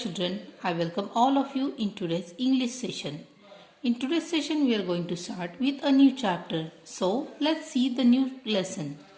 I welcome all of you in today's English session. In today's session we are going to start with a new chapter. So let's see the new lesson.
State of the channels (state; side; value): identical; both; correlation 1.00